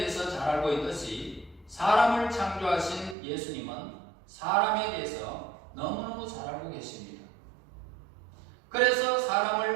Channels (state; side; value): drops out; left; at 3.2 s